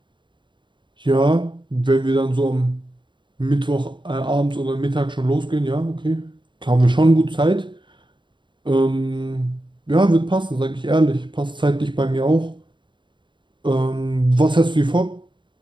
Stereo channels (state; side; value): late; left; 0.23 ms